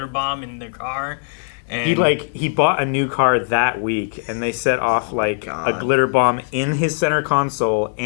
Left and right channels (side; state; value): right; silent; 58 dB below the other